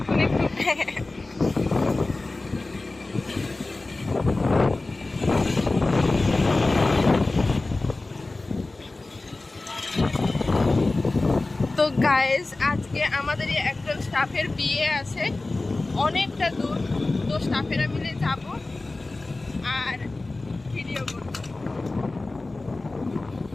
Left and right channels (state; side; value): quieter; right; 3.2 dB